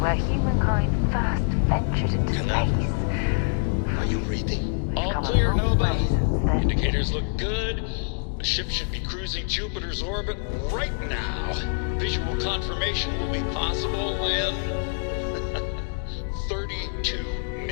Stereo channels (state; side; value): silent; right; digital silence